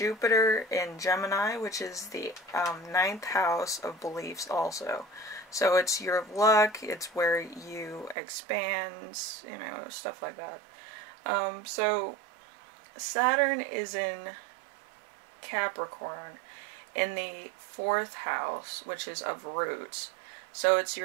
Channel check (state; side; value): drops out; left; at 8.2 s